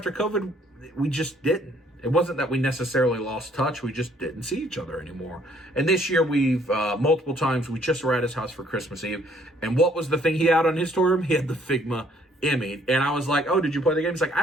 COVID, we just didn't. It wasn't that we necessarily lost touch, we just didn't see each other anymore. And this year we've, multiple times, we just were at his house for Christmas Eve. And what was the thing he had on his toy room? He had the Figma EMMI. And I was like, oh, did you play the game? He's like, I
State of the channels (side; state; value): both; normal; correlation 0.64